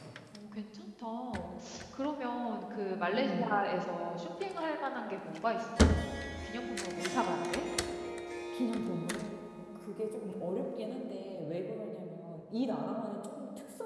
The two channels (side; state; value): both; identical; correlation 1.00